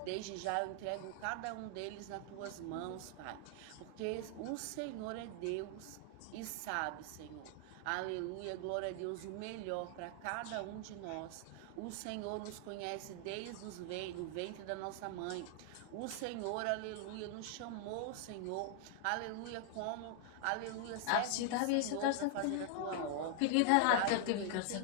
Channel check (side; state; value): both; different; correlation 0.00